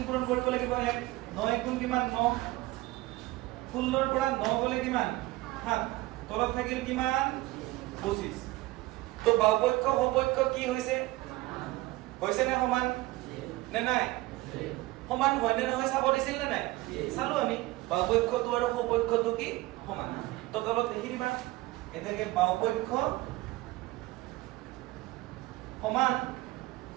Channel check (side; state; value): left; quieter; 19.5 dB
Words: পূৰণ কৰিব লাগিব 1 9 গুণ কিমান 9 16 ৰ পৰা 9 গলে কিমান 7 তলত থাকিল কিমান 25 তো বাহুপক্ষ সপক্ষ কি হৈছে নে সমান নে নাই সমান হয় নে নহয় চাব দিছিল নে নাই চালো আমি বাহুপক্ষটো আৰু সপক্ষটো কি সমান তো তলত লিখি দিবা এটাকে বাহুপক্ষ সমান